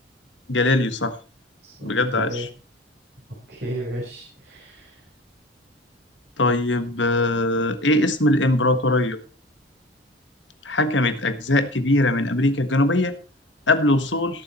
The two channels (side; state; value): both; normal; correlation 0.39